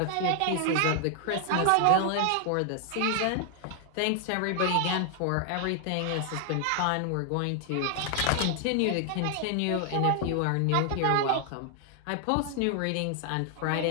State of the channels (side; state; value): both; different; correlation 0.00